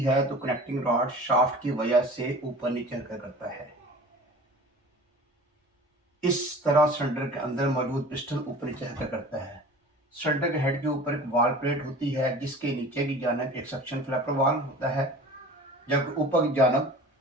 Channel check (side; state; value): both; normal; correlation 0.41